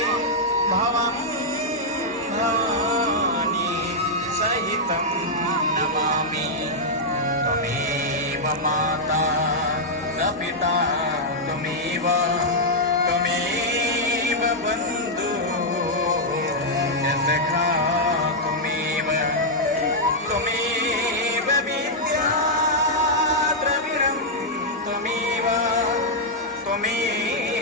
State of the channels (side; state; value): both; normal; correlation -0.05